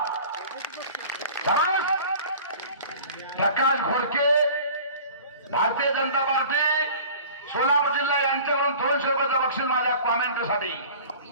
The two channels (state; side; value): inverted; both; correlation -0.43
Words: प्रकाश घोडके भारतीय जनता पार्टी सोलापूर जिल्हा यांच्याकडून 200 रुपयाचं बक्षीस माझ्या कॉमेंट्रीसाठी.